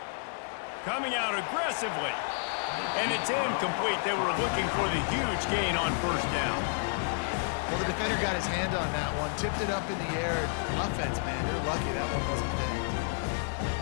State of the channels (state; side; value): silent; right; 58 dB below the other